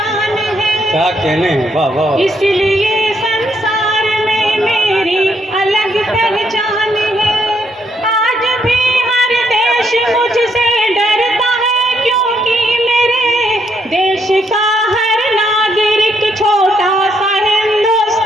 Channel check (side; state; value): both; normal; correlation 0.74